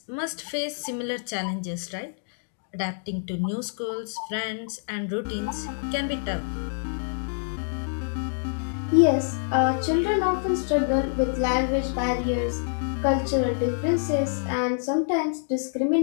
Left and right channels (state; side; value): silent; right; digital silence